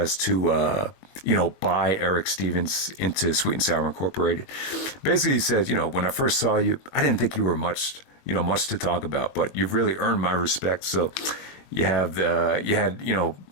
to, buy Erick Stevens into Sweet and Sour Incorporated. Basically, he says, when I first saw you, I didn't think you were much to talk about, but you've really earned my respect. So you had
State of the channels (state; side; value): late; right; 21 ms